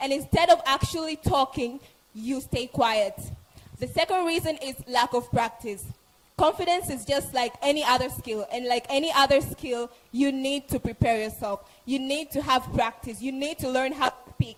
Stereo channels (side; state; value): both; identical; correlation 1.00